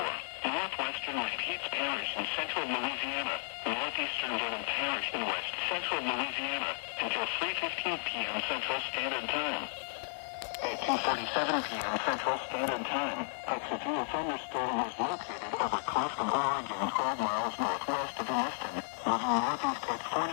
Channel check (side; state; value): right; silent; 55 dB below the other